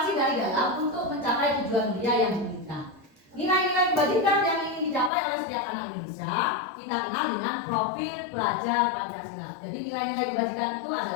dari dalam untuk mencapai tujuan mulia yang profil pelajar Pancasila. Jadi nilai-nilai kebajikan itu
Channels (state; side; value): drops out; right; at 5.1 s